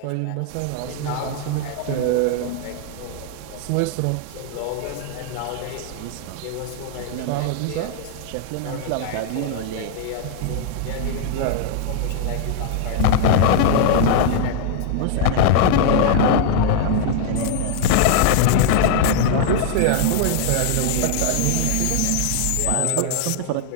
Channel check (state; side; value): different; both; correlation -0.01